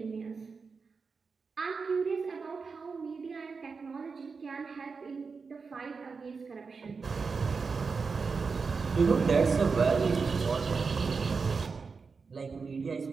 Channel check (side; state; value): left; quieter; 4.9 dB